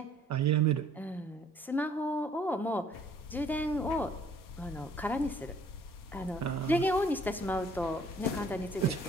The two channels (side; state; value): both; normal; correlation 0.58